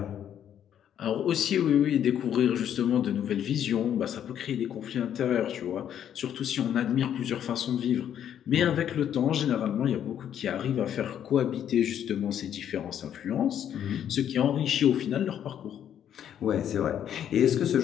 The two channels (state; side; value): quieter; right; 9.8 dB